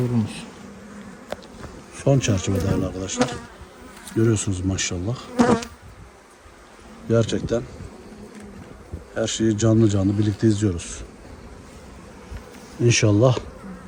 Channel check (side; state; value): both; identical; correlation 1.00